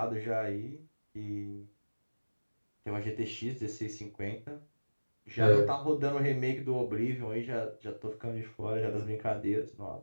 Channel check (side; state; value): both; inverted; correlation -1.00